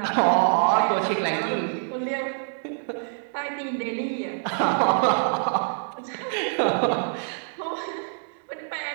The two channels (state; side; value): silent; left; digital silence